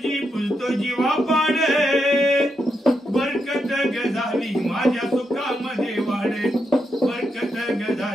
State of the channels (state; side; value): normal; both; correlation 0.83